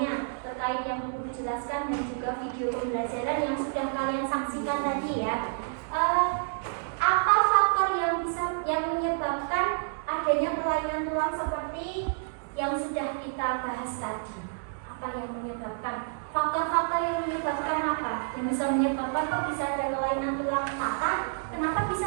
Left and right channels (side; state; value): left; silent; digital silence